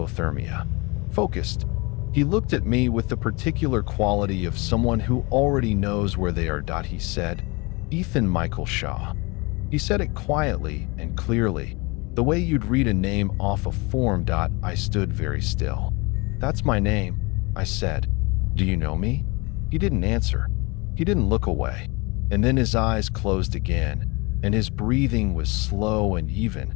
Focused. He looked at me with the particular quality of someone who already knows where they are. He said, "Ethan Michael Shaw." He said it quietly and clearly, the way you'd read a name off a form. I stood very still. "That's my name," I said. "Do you know me?" He didn't answer. He didn't look away. And then his eyes closed again, and his breathing was slow and even,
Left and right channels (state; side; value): quieter; right; 26.9 dB